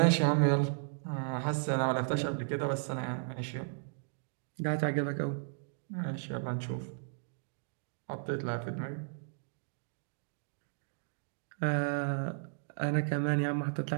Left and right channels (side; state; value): left; silent; digital silence